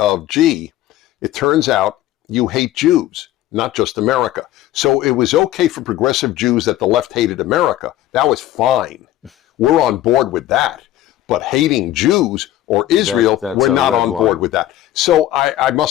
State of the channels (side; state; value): right; quieter; 13.9 dB